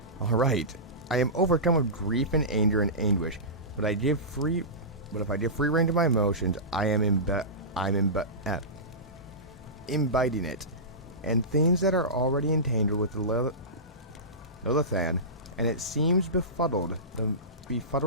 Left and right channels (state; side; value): normal; both; correlation -0.20